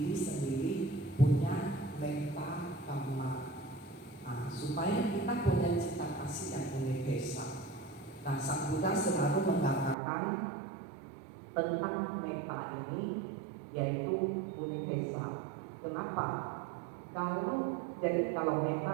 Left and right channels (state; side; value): drops out; left; at 10.0 s